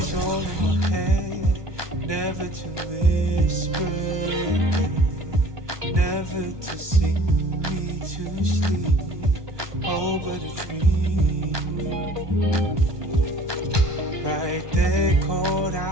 all in my head, never to whisper again, never to sing me to sleep, oh but a dream. Right there caught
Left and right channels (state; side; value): late; left; 1.2 ms